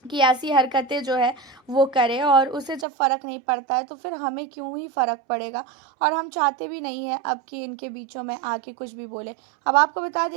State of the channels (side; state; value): left; drops out; at 2.9 s